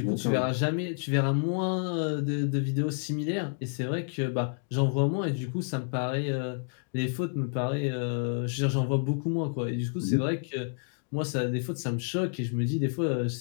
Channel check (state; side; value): silent; right; digital silence